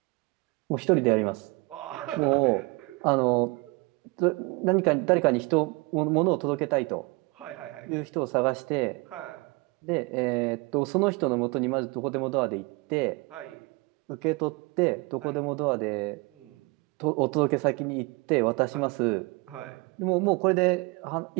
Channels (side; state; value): left; quieter; 27.1 dB